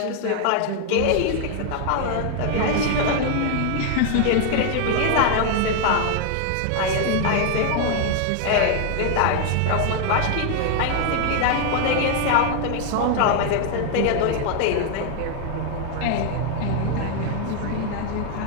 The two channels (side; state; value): both; different; correlation 0.00